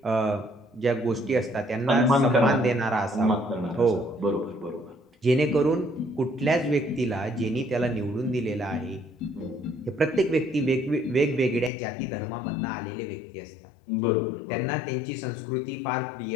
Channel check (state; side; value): drops out; right; at 11.7 s